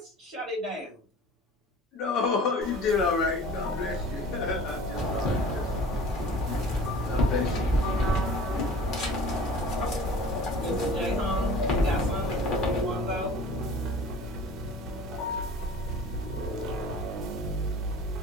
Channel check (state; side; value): normal; both; correlation 0.43